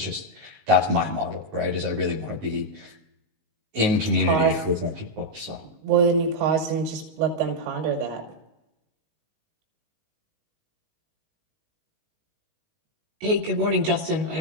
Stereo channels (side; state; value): left; late; 19 ms